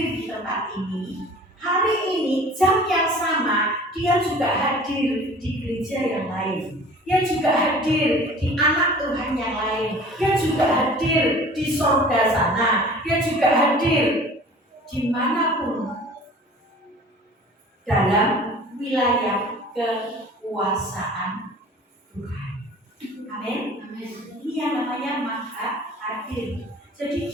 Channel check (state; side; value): normal; both; correlation 0.45